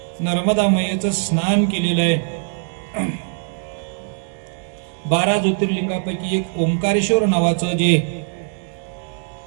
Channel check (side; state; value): left; silent; 65 dB below the other